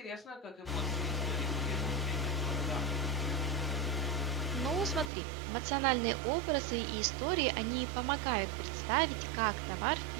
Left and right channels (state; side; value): drops out; left; at 5.1 s